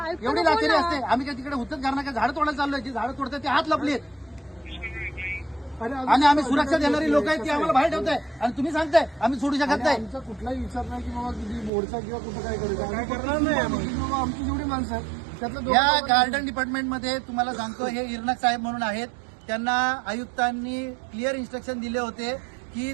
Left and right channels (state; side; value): drops out; left; at 11.7 s